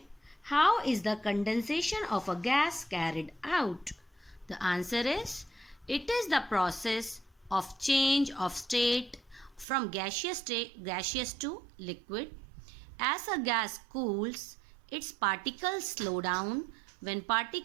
How is the condensation of a gas carried out? The answer is it is the process of change of state from gaseous to liquid. As a gas cools, its particles slow down. When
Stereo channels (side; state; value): left; drops out; at 9.7 s